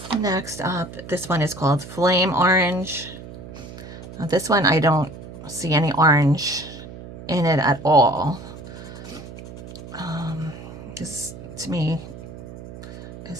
Next up, this one is called Flame Orange. Now this one I don't see any orange in it at all. This to me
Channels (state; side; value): noise; right; hum, 14 dB below the sound